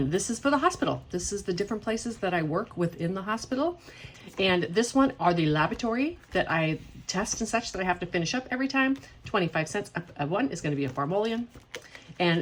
this is for the hospital. This is the different places that I work within the hospital. And this one are the laboratory that I test and such that I have to finish up every time. 25 cents. One is going to be a farmolian.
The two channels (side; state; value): both; identical; correlation 1.00